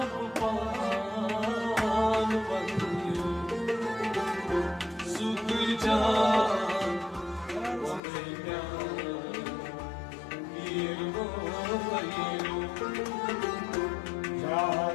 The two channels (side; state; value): right; drops out; at 8.0 s